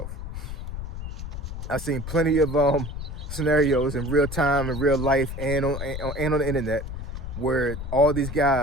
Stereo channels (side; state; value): left; noise; rumble, 7 dB below the sound